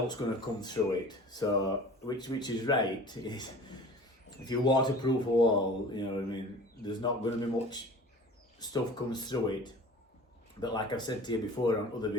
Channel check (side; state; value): both; normal; correlation 0.42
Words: going to come through it. So which is right. If you waterproof a wall, you know what I mean, there's not going to be much stuff comes through it. But like I've said to you before on other